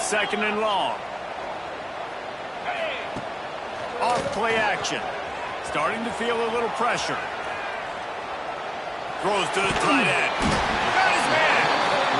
and long. Off play action. Starting to feel a little pressure. Throws to the tight end. Got his man.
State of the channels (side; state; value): both; identical; correlation 1.00